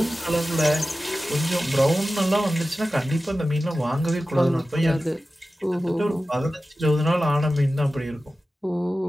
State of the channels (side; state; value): both; normal; correlation 0.95